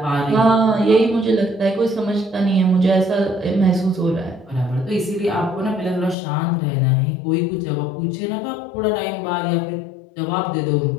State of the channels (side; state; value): right; drops out; at 6.2 s